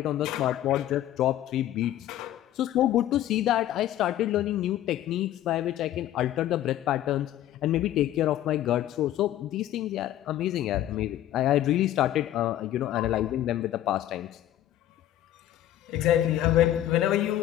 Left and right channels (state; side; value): quieter; right; 12.8 dB